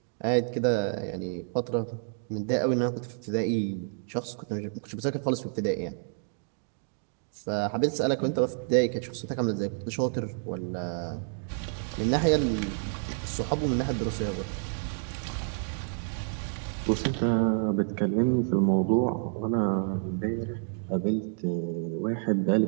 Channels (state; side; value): silent; left; 58 dB below the other